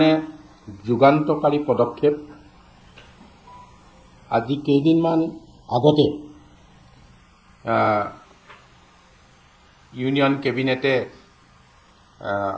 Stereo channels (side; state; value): both; identical; correlation 1.00